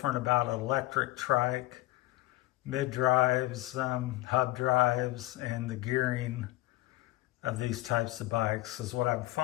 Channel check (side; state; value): right; quieter; 18.4 dB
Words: about electric trike, mid drives, hub drives, and the gearing of these types of bikes is what I'm